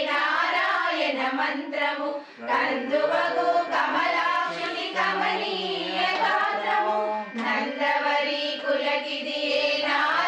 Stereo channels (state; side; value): identical; both; correlation 1.00